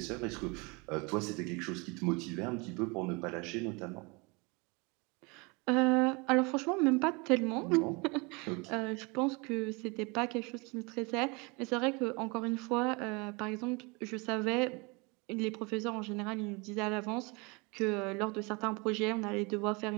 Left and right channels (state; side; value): quieter; left; 28.5 dB